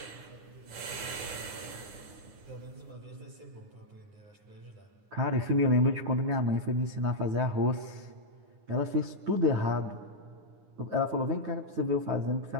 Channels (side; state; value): left; late; 9.8 ms